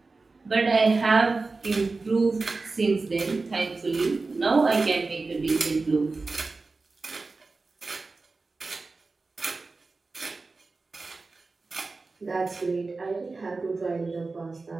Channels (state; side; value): quieter; left; 3.8 dB